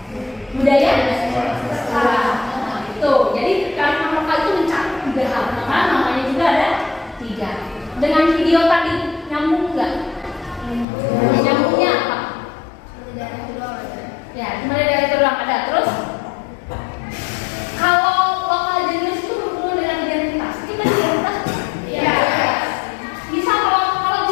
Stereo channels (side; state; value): right; drops out; at 10.9 s